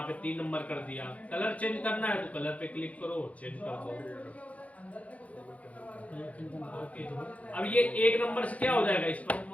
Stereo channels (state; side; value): late; right; 0.067 ms